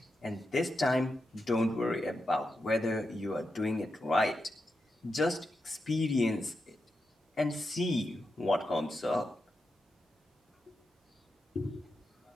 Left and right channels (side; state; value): both; normal; correlation 0.87